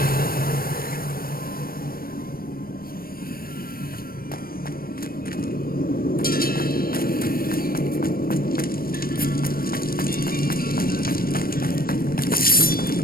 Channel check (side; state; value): right; late; 0.43 ms